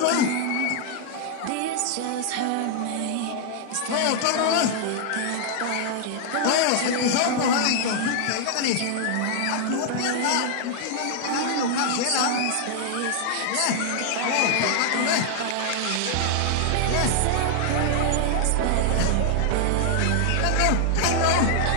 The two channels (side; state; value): both; different; correlation -0.01